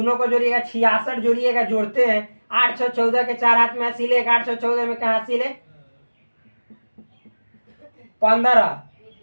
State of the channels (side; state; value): both; inverted; correlation -1.00